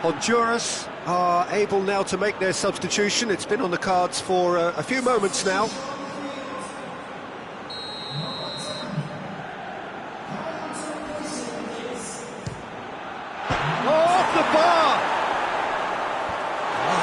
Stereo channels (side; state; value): both; identical; correlation 1.00